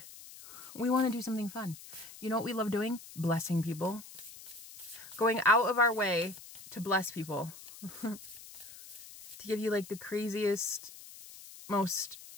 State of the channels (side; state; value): left; noise; hiss, 16 dB below the sound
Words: We want to do something fun. You know what we love doing? Blessing people. Going out of our way to bless people. To give you like the craziest, most